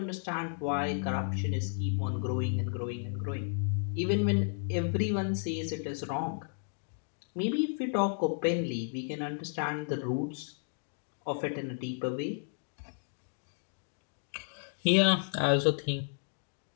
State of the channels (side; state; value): right; silent; digital silence